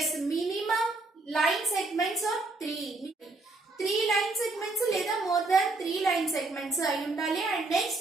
minimum line segments are 3 line segments లేదా more than 3 line segments అయి ఉండాలి. And next,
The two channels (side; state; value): left; quieter; 3.3 dB